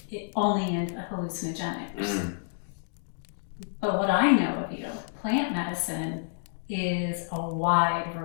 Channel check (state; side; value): silent; right; digital silence